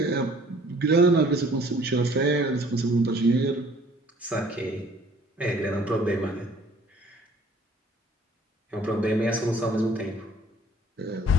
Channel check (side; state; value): both; normal; correlation 0.55